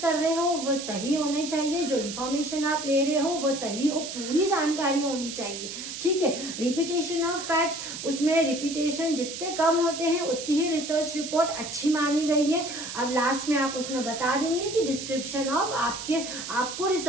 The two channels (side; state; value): right; noise; hiss, 8 dB below the sound